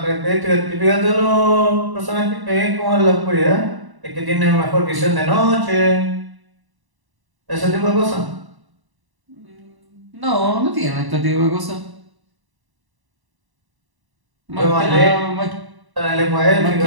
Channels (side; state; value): left; late; 1.1 ms